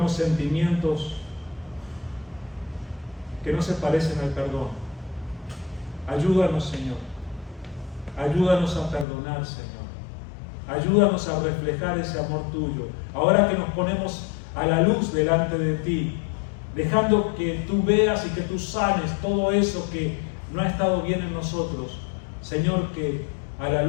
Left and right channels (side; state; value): right; drops out; at 9.1 s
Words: sentimientos que no se parecen al perdón. Ayúdanos, Señor. Ayúdanos a perdonar, Señor. Ayúdanos a reflejar ese amor tuyo. Ahora que nos ponemos a la luz delante de ti, dejando que tú veas y que tú sanes todo eso que no ha estado bien en nosotros. Señor, que a la